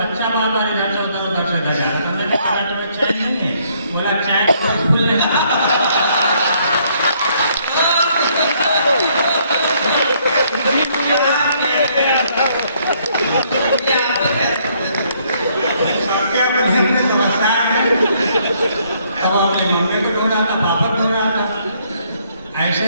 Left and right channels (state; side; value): inverted; both; correlation -0.68